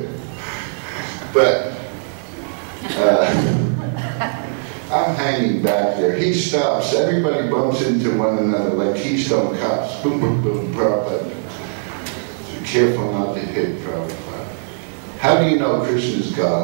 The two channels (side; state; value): left; silent; digital silence